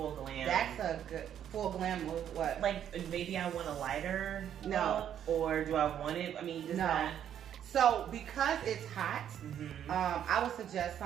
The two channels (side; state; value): left; quieter; 9.8 dB